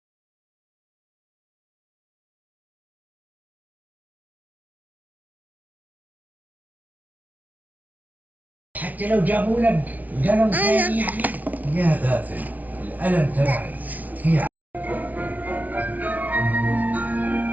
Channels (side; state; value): left; late; 0.075 ms